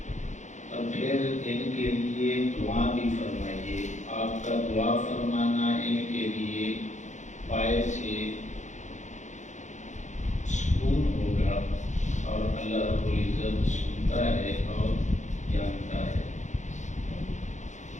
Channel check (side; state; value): right; late; 0.35 ms